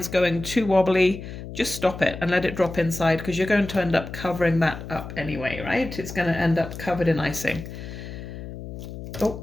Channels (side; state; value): left; noise; hum, 10 dB below the sound